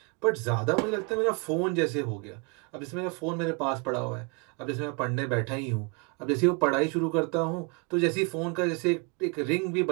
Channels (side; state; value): left; quieter; 32.7 dB